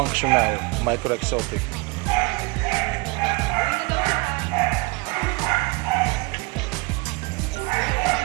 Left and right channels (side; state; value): left; quieter; 26.8 dB